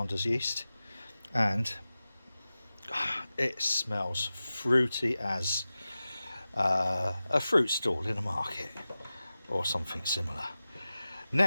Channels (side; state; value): both; inverted; correlation -0.95